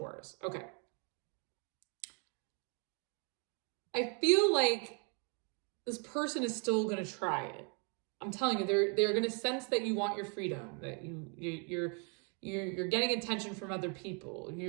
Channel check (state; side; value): quieter; left; 37.3 dB